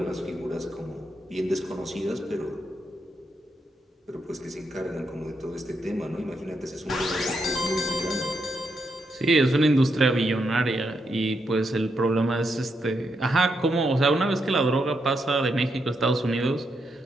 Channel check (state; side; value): normal; both; correlation 0.81